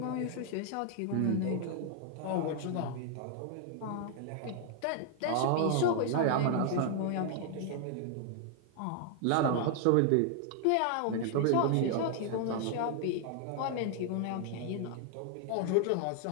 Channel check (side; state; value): both; different; correlation 0.00